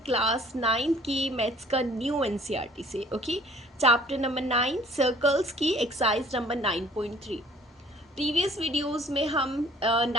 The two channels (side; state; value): both; normal; correlation 0.54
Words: क्लास 9 की मैथ्स का न्यू एनसीईआरटी से। ओके, चैप्टर नंबर 9 सर्कल्स की एक्सरसाइज नंबर 9.3। प्रीवियस वीडियोस में हम